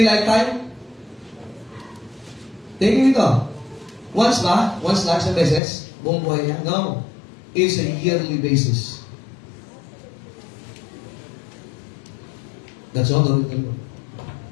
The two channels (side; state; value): right; drops out; at 5.6 s